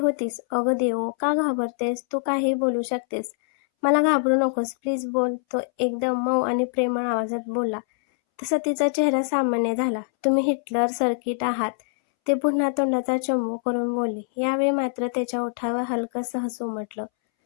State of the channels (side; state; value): right; silent; 62 dB below the other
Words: अगं देवो, का घाबरतेस? तू काहीही बोलू शकतेस. मला घाबरू नकोस. प्लीज बोल. तो एकदम मऊ आणि प्रेमळ आवाजात बोलला. तसा तिचा चेहरा सामान्य झाला. तुम्ही हिटलर सर्किट आहात. ते पुन्हा तोंडाचा चंबू करून बोलली. यावेळी मात्र त्याच्या ओठावर हलकंसं हसू उमटलं.